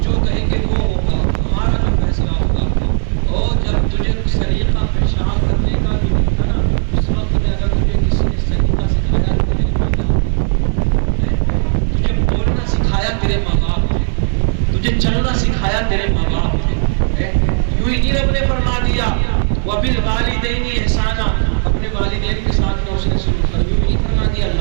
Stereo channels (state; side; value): silent; left; digital silence